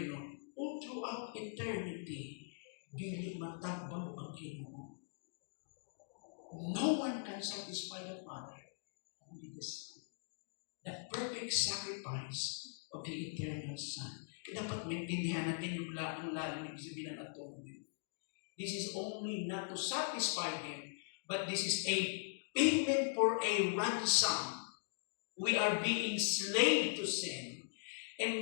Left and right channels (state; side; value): silent; right; digital silence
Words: all throughout eternity, dili matagbaw ang Ginoo. No one can satisfy the Father, only the Son. The perfect sacrifice of the eternal Son. Kaya dapat maintindihan natin yung lalim ibig sabihin ng atonement. This is only not to satisfy Him, but this is a payment for a ransom. We are being slave to sin.